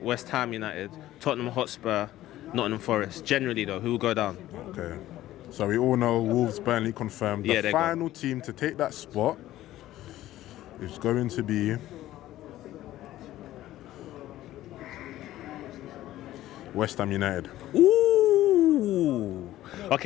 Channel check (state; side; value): quieter; right; 14.6 dB